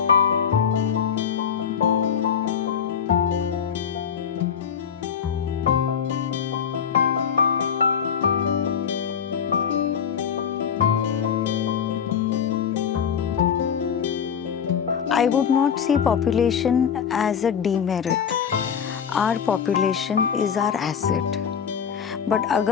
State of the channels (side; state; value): right; quieter; 7.5 dB